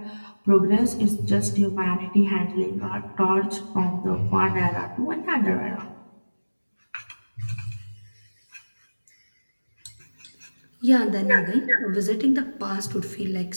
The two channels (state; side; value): inverted; both; correlation -1.00